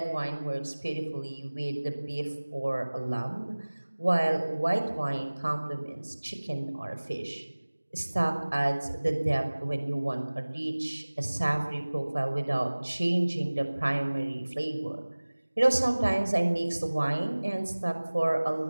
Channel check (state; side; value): inverted; both; correlation -1.00